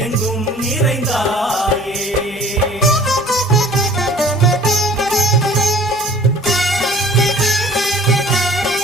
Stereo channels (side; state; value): both; normal; correlation 0.50